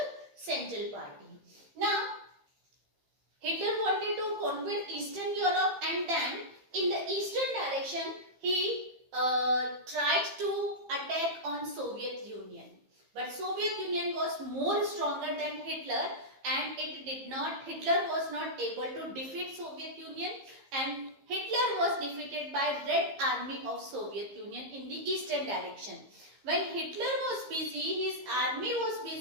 Central party. Now Hitler wanted to conquer Eastern Europe, and then in the eastern direction he tried to attack on Soviet Union. But Soviet Union was more stronger than Hitler, and Hitler was not able to defeat Soviet Union, and Hitler was defeated by Red Army of Soviet Union in the eastern direction. When Hitler was busy, his army was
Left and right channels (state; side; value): late; left; 15 ms